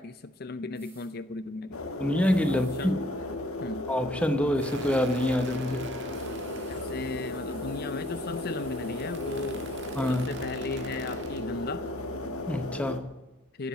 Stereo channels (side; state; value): both; normal; correlation 0.61